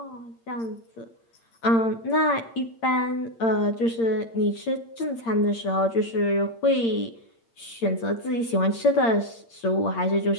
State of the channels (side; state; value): right; late; 8.7 ms